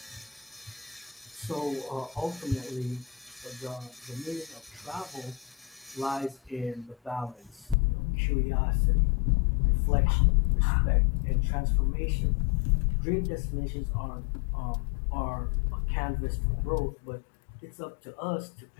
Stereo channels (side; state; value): right; drops out; at 7.8 s